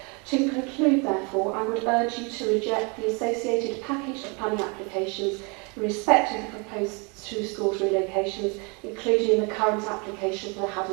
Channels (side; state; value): left; quieter; 32.0 dB